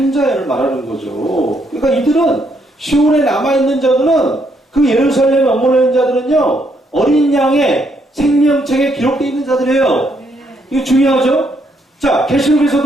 자를 말하는 거죠. 그러니까 이들은 시온에 남아있는 자들은 그 예루살렘에 머물러 있는 자들은요, 어린 양의 생명책에 기록되어 있는 자들이에요. 이거 중요하죠? 자,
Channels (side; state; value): both; normal; correlation 0.73